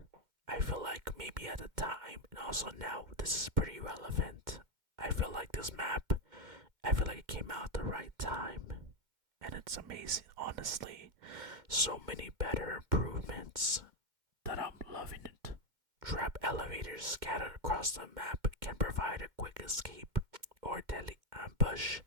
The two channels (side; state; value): left; late; 2.1 ms